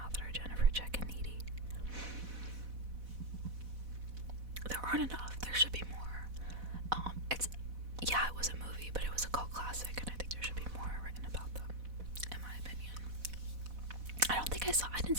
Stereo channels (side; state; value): left; late; 4.1 ms